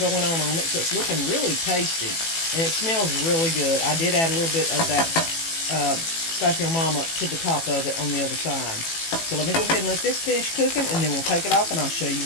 on it, so it's looking really tasty. And it smells really good. I did add a little bit of that Slap Your Mama to the top of it on the other side. So let me go ahead and let this finish cooking, and then we'll take it off and I'll show you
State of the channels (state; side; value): late; right; 18 ms